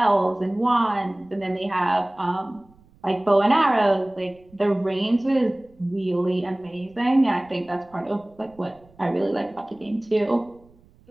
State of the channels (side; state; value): right; noise; rumble, 29 dB below the sound